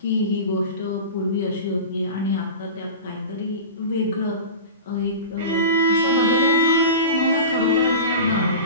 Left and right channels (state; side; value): inverted; both; correlation -0.30